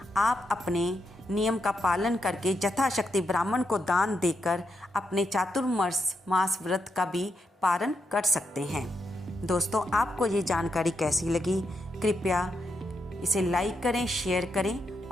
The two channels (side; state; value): both; normal; correlation 0.82